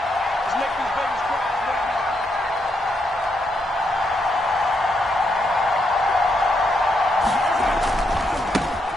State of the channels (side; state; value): both; normal; correlation 0.79